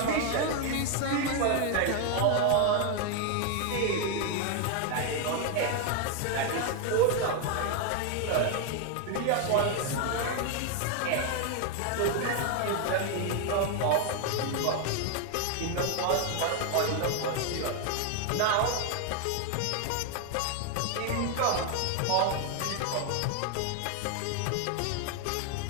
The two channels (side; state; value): both; different; correlation 0.01